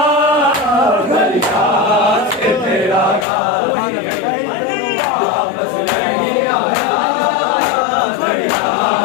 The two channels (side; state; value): right; drops out; at 3.2 s